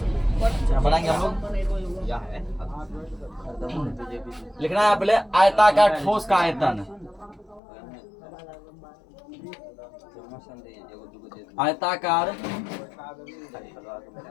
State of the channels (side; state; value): right; drops out; at 7.6 s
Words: बनाएंगे हम लोग। लिखना है पहले आयताकार ठोस का आयतन, आयताकार